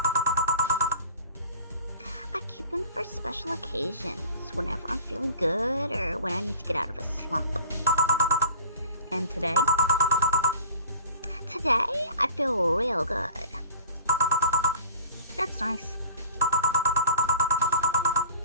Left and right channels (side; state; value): both; inverted; correlation -0.45